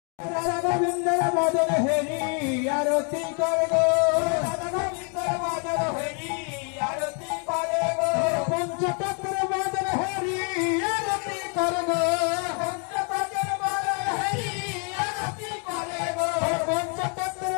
রাধা গোবিন্দর মদন হেরি আরতি করে গো, রাধা গোবিন্দর মদন হেরি আরতি করে গো, পঞ্চতত্ত্বের মদন হেরি আরতি করে গো, পঞ্চতত্ত্বের মদন হেরি আরতি করে গো, পঞ্চতত্ত্বের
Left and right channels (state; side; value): quieter; right; 38.6 dB